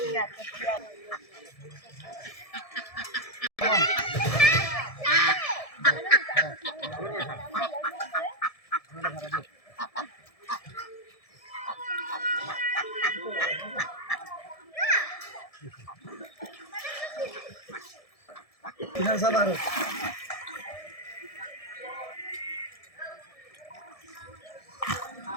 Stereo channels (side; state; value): right; late; 1.7 ms